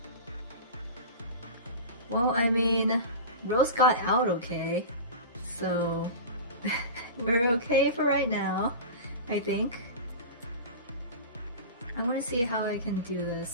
Well, I mean, Rose got out okay, so we're okay for right now, I think. I want to see how I can do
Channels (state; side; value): inverted; both; correlation -0.31